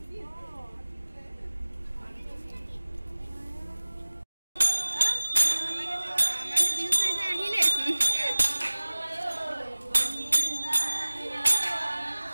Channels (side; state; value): both; inverted; correlation -1.00